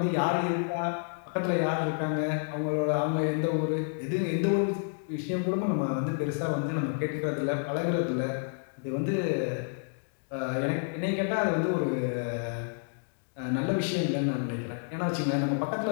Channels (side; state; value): right; silent; digital silence